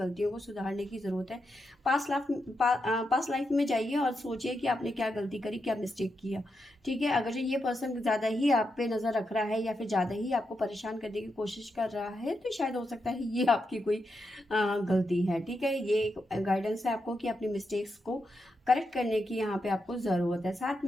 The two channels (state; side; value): normal; both; correlation 0.85